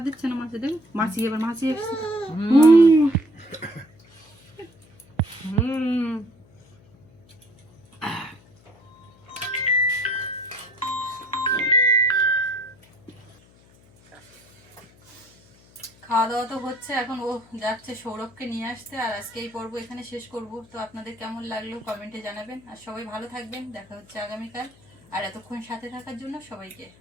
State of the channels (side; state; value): left; noise; hum, 28 dB below the sound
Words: দিচ্ছে না মাছে। দেখ মাছি এবার মাছি এসছে। খাওয়া দাওয়া তো হচ্ছে, এখন ও যাচ্ছে সৌরভকে নিয়ে আসতে। আর আজকে এই পর্ব এখানে শেষ করব। তো আপনাদের কেমন লাগলো কমেন্টে জানাবেন। আর সবাই ভালো থাকবেন, দেখা হচ্ছে আগামীকাল। আর এতক্ষণ সাথে থাকার জন্য সবাইকে